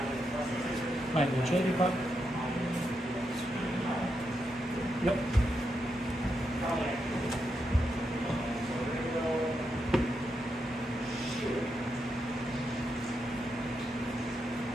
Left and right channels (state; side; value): normal; both; correlation 0.84